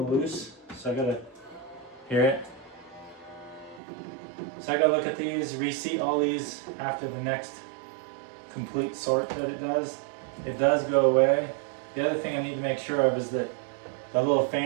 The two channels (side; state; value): left; drops out; at 3.8 s